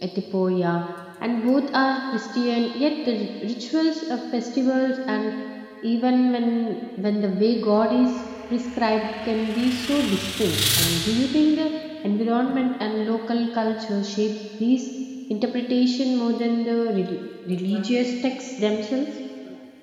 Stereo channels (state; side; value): identical; both; correlation 1.00